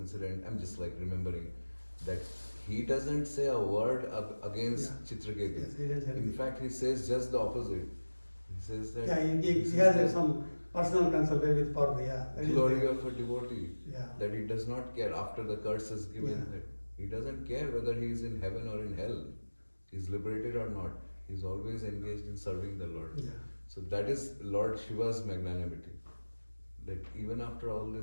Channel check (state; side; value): inverted; both; correlation -1.00